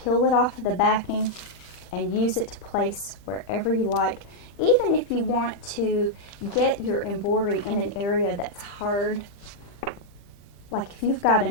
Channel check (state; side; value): late; right; 40 ms